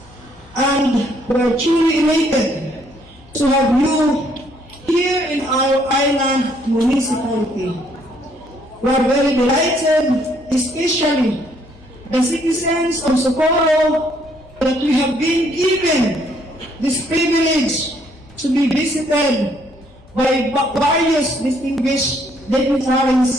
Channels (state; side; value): noise; left; hum, 27 dB below the sound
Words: and we are truly elated to have you here in our island municipality. We are very delighted, especially the citizens of Socorro, that we have been given this privilege to be visited by various distinguished